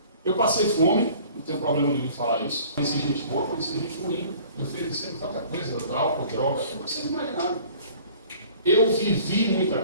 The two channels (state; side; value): inverted; both; correlation -0.50